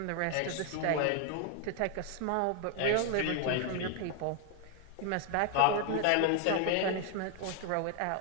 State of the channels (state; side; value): different; both; correlation 0.01